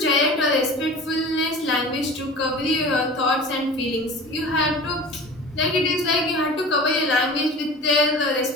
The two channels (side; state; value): both; normal; correlation 0.37